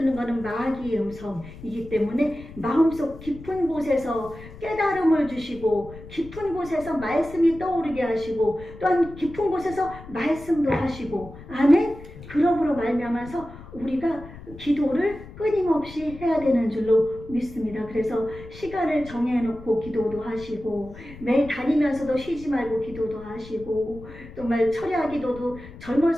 거는 마귀의 음성이기 때문에 마음속 깊은 곳에서 깨달음을 주시고 깊은 곳에서 말씀이 떠오르게 하시고 또한 깊은 곳에서 말씀도 하시고 아멘. 그러므로 말미암아서 우리가 기도를 끊임없이 해야 되는 줄로 믿습니다. 그래서 시간을 정해놓고 기도도 하시고 매일 다니면서도 쉬지 말고 기도도 하시고 정말 철야 기도도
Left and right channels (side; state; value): left; noise; rumble, 16 dB below the sound